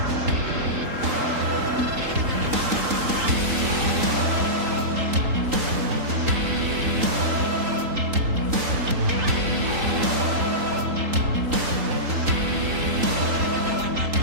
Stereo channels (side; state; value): left; late; 3.8 ms